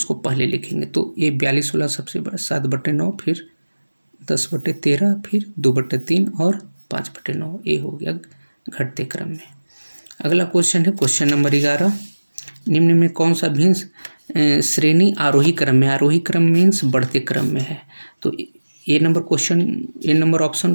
पहले लिखेंगे। तो ये 42 वाला सबसे बड़ा, 7/9, फिर 10/13, फिर 2/3 और 5/9। ये हो गया घटते क्रम में। अगला क्वेश्चन है क्वेश्चन नंबर 11, निम्न में कौन सा भिन्न श्रेणी आरोही क्रम में, आरोही क्रम मीन्स बढ़ते क्रम में है। तो ए नंबर ऑप्शन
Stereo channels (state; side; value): inverted; both; correlation -1.00